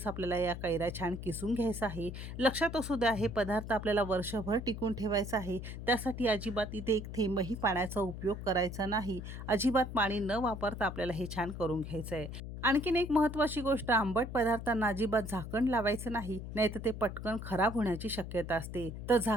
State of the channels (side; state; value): left; noise; hum, 8 dB below the sound